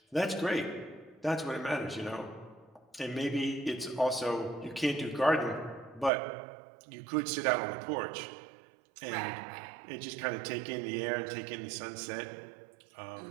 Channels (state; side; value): drops out; left; at 6.1 s